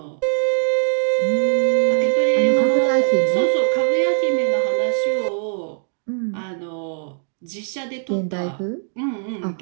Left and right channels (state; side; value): silent; left; 65 dB below the other